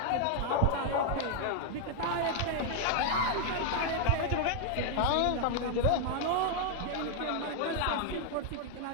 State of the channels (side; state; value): both; different; correlation 0.00